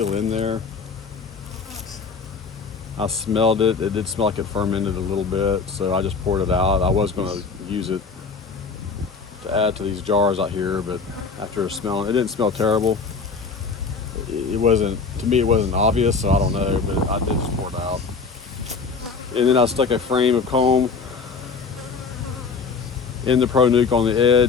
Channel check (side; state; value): right; quieter; 4.9 dB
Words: in there. I smelled it. It did smell like it fermented a little bit, so I just poured it out. I was going to use it to add to these jars out here, but after smelling, it didn't smell terrible. It wasn't, to me, it wasn't obvious, so I don't know, but I did just pour it out. And then I stuck a frame of comb in the Pro Nuke on the